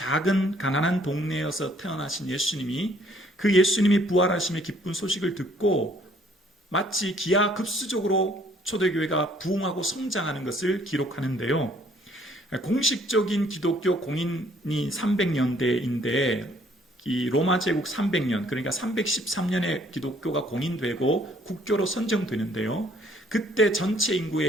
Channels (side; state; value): both; normal; correlation 0.62